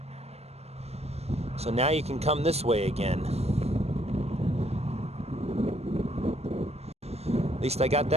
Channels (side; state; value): left; late; 0.30 ms